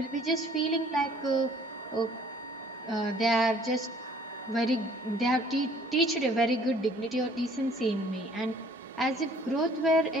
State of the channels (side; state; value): both; normal; correlation 0.56